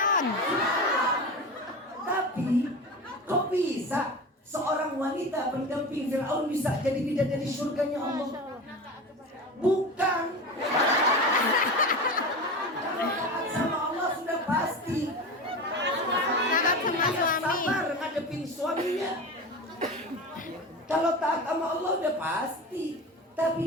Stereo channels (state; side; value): normal; both; correlation 0.28